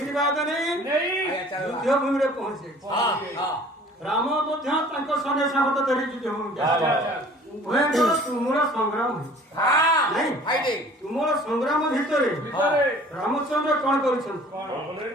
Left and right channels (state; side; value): normal; both; correlation 0.50